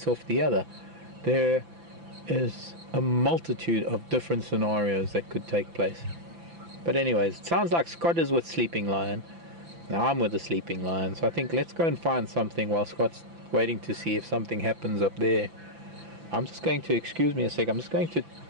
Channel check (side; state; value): left; late; 5.9 ms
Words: off the other. There is a multitude of different scenarios that could take place. But anyways, it sounds like Scott is with Sleeping Lion. Now I'm with the Sleeping Lion, so I think let's go and find something while Scott's waiting to see if something happens up there. I'm just going to, excuse me a sec, I'm just going to